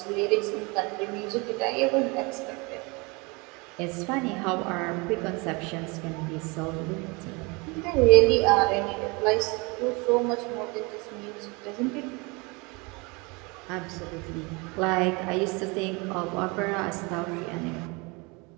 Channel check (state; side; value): quieter; left; 28.0 dB